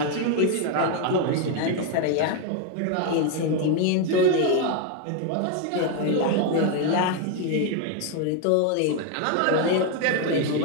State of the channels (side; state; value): both; different; correlation 0.01